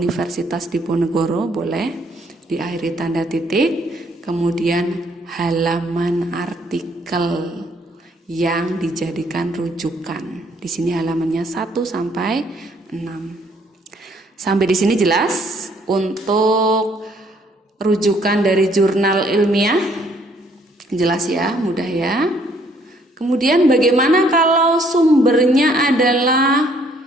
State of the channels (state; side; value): normal; both; correlation 0.65